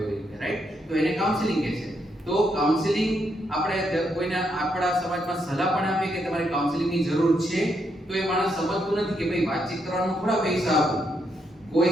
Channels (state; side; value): normal; both; correlation 0.78